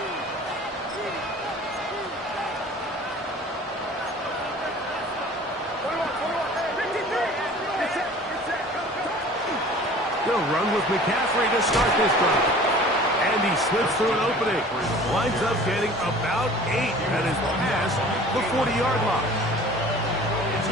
They'll run with McCaffrey to start this drive. And he slips through an opening. Winds up getting about 8 and is past the 40-yard line.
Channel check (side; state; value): both; normal; correlation 0.45